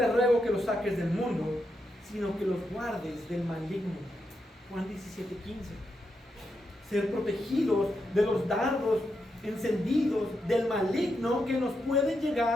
ruego que los saques del mundo, sino que los guardes del maligno. Juan 17:15. Ser protegidos de los dardos encendidos del maligno que nos pueden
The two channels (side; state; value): both; normal; correlation 0.84